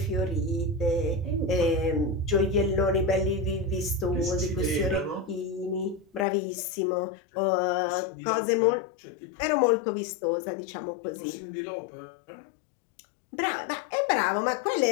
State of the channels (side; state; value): right; drops out; at 6.2 s